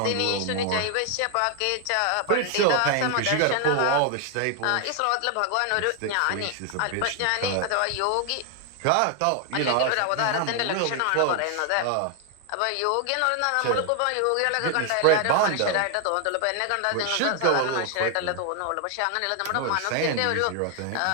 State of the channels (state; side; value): different; both; correlation 0.00